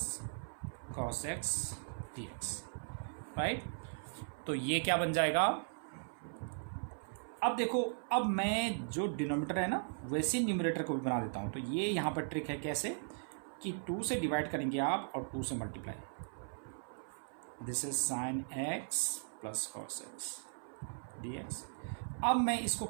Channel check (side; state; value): left; silent; 52 dB below the other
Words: cos x dx, right. तो ये क्या बन जाएगा, अब देखो, अब मैं जो डिनोमिनेटर है ना वैसे न्यूमरेटर को भी बना देता हूं। तो ये यहाँ पर ट्रिक है कैसे, कि 2 से डिवाइड करेंगे आप और 2 से multiply, this is sine x plus cos x dx। अब मैं इसको